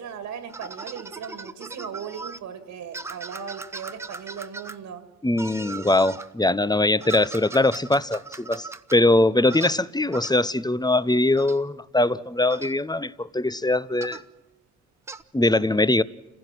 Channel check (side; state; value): both; normal; correlation 0.61